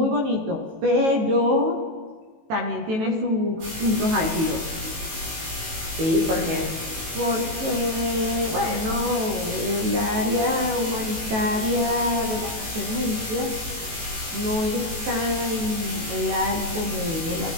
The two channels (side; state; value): left; late; 18 ms